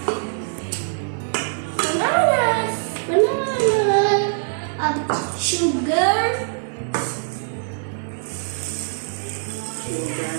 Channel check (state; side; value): silent; left; 64 dB below the other